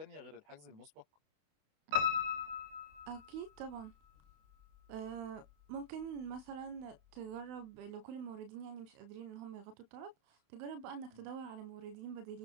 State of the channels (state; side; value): late; left; 28 ms